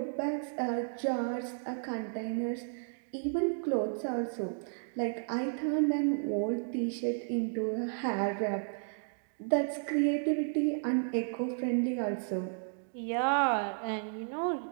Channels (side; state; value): left; silent; digital silence